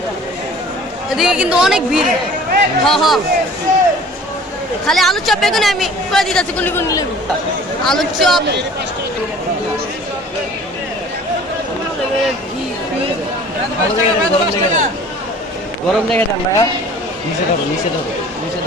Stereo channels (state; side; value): normal; both; correlation 0.47